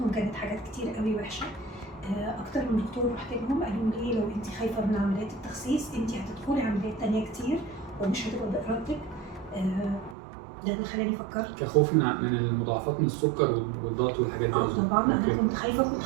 كانت حاجات كتير قوي وحشه. اكتر من دكتور رحت لهم قالوا لي لو انت خايفه من عمليات التخسيس انت هتدخلي عمليات تانية كتير ومش هتبقى بارادتك. ده اللي خلاني فكرت كخوف من المضاعفات من السكر والضغط والحاجات دي. طبعا انا كنت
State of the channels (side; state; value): left; drops out; at 10.2 s